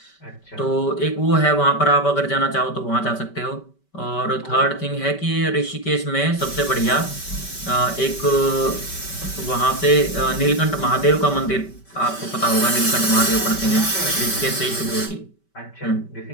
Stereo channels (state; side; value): late; right; 5.2 ms